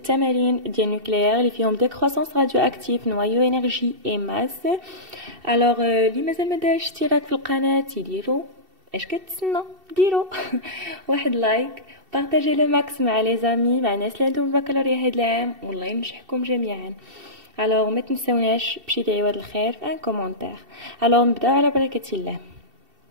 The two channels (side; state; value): left; late; 2.7 ms